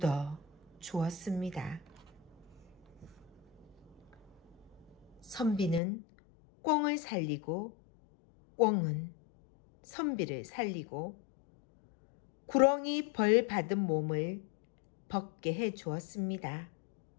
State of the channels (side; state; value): right; drops out; at 5.8 s